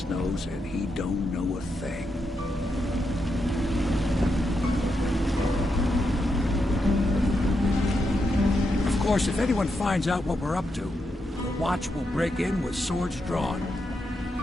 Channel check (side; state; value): both; normal; correlation 0.83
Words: nose, and he don't know a thing. Of course, if anyone finds out what we're up to, the Watch will break in with swords drawn.